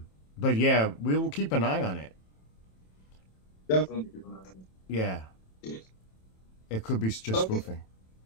But yeah, we will keep an eye on it. Definitely. Yeah, it could be just Okay. spoofing.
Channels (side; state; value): right; late; 27 ms